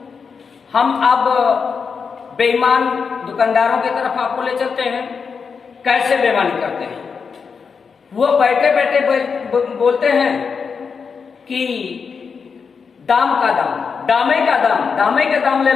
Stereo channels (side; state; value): right; quieter; 5.7 dB